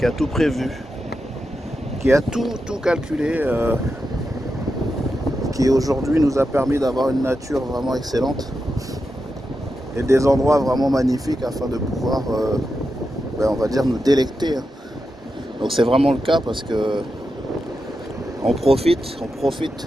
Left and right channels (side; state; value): both; normal; correlation 0.88